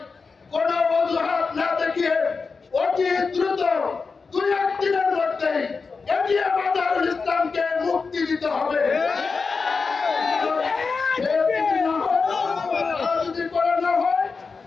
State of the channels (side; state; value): right; quieter; 4.7 dB